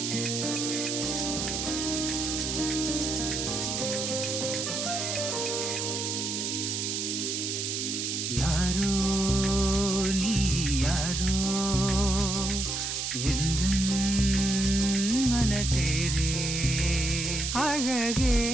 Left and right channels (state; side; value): noise; right; hiss, 2 dB below the sound